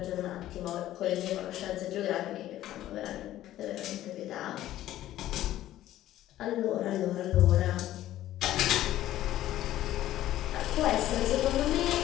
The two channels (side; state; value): right; quieter; 13.7 dB